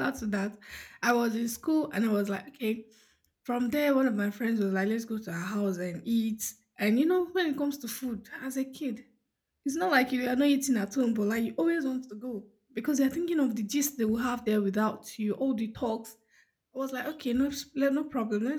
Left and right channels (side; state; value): both; identical; correlation 1.00